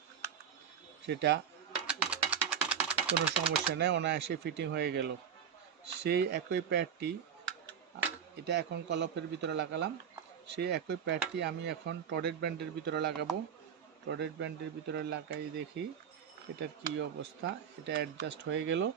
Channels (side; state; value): left; quieter; 7.9 dB